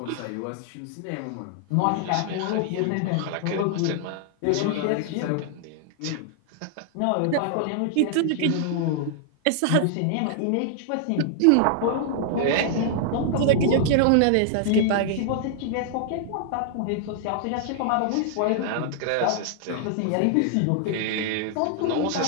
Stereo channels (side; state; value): both; different; correlation -0.01